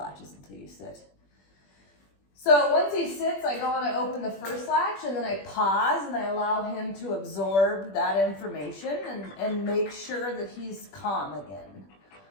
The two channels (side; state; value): right; late; 21 ms